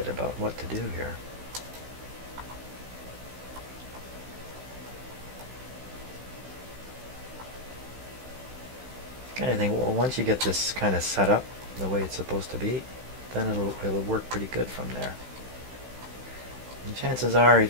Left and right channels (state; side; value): late; left; 16 ms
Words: about what to do here. Kind of thing. Well, once you get this kind of set up the way it's supposed to be, then it'll work pretty good from there. And chances are,